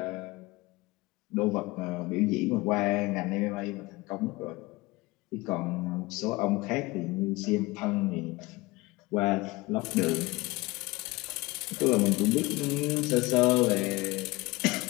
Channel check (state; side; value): quieter; right; 21.7 dB